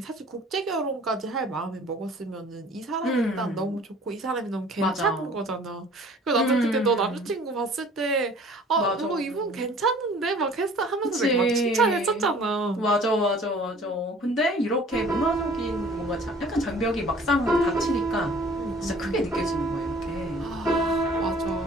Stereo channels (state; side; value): normal; both; correlation 0.50